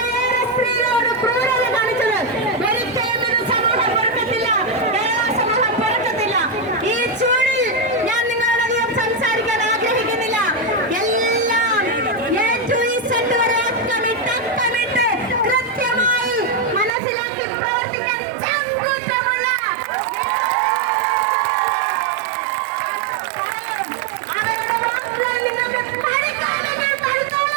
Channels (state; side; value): drops out; left; at 16.9 s